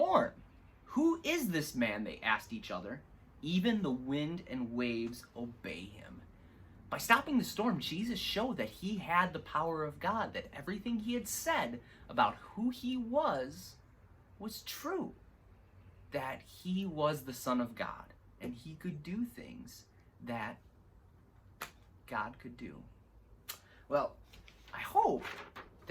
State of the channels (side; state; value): both; identical; correlation 1.00